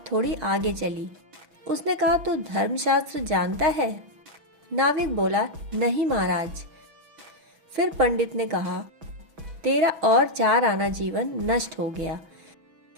थोड़ी आगे चली। उसने कहा, तू धर्मशास्त्र जानता है? नाविक बोला, नहीं महाराज। फिर पंडित ने कहा, तेरा और 4 आना जीवन नष्ट हो गया,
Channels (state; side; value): late; left; 6.1 ms